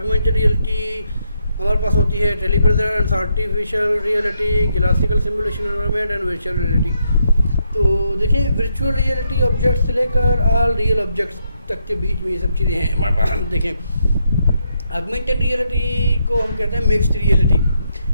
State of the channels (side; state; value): both; inverted; correlation -0.78